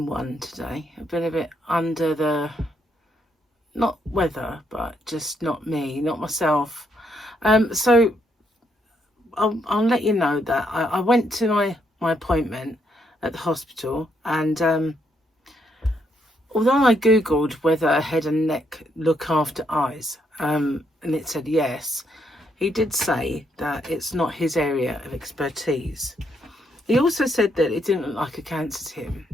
one today. I've been a bit under the, not weather, but just not me, not myself. So I'll let you know that I went to my appointment at the hospital, and although I googled whether head and neck look after eyes, and it said yes, he did say that it's not his area of expertise. He also said that it didn't look like a cancer to him.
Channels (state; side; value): normal; both; correlation 0.75